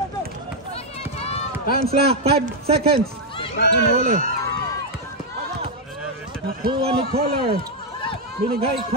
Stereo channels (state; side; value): normal; both; correlation 0.01